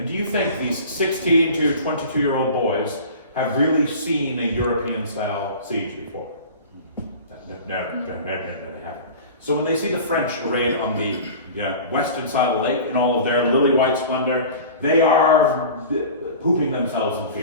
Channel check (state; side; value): inverted; both; correlation -0.39